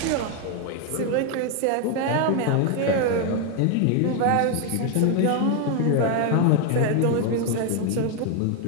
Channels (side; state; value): both; different; correlation 0.01